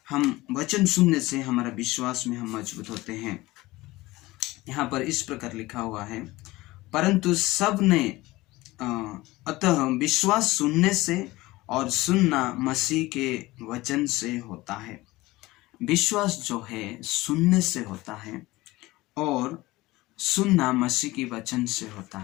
हम वचन सुनने से हमारा विश्वास में हम मजबूत होते हैं। यहाँ पर इस प्रकार लिखा हुआ है, परंतु सब ने अतः विश्वास सुनने से और सुनना मसीह के वचन से होता है। विश्वास जो है सुनने से होता है, और सुनना मसीह के वचन से होता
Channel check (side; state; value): right; quieter; 19.4 dB